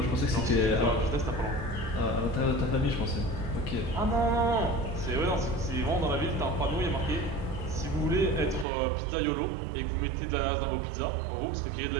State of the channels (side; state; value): left; drops out; at 8.7 s